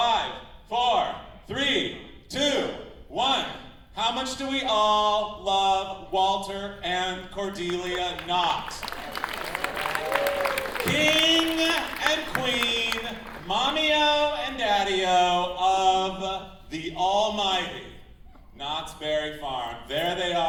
4, 3, 2, 1. How much do we all love Walter and Cordelia Knott? King and Queen, Mommy-O and Daddy-O of the almighty Knott's Berry Farm. There they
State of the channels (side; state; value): both; identical; correlation 1.00